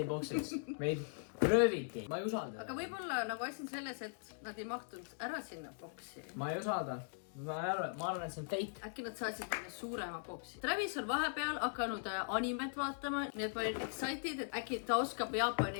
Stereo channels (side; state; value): right; silent; digital silence